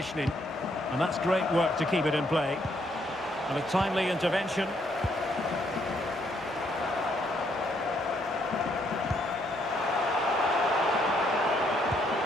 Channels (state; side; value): normal; both; correlation 0.71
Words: And that's great work to keep it in play. And a timely intervention.